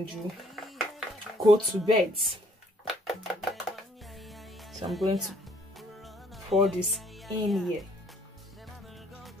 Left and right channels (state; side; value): normal; both; correlation 0.63